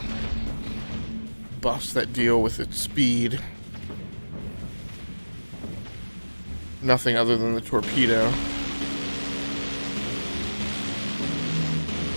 buffs that deal with its speed. Nothing other than the torpedo.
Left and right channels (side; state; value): both; inverted; correlation -1.00